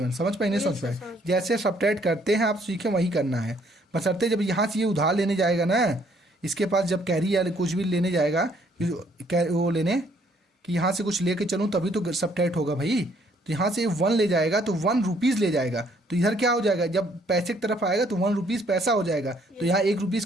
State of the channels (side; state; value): both; normal; correlation 0.65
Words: समझ पाए नहीं समझ पाए? जैसे सब्ट्रैक्ट करते हैं आप सीखे वही करना है, बशर्ते जब यहाँ से ये उधार लेने जाएगा ना, इसके पास जब कैरी या कुछ भी लेने जाएगा वो लेने कि यहाँ से कुछ लेके चलूँ तभी तो सब्ट्रैक्ट होगा भाई। तो यहाँ से 1 ले जाएगा तो 1 रुपीज़ ले जाएगा, तो इधर क्या हो जाएगा जब पैसे की तरफ आएगा तो 1 रुपीज़ पैसा हो जाएगा, तो यहाँ 1 रुपीज़